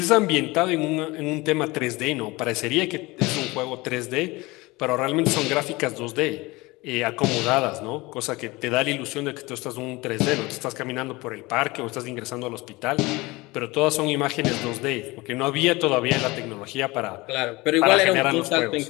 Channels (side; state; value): right; quieter; 22.3 dB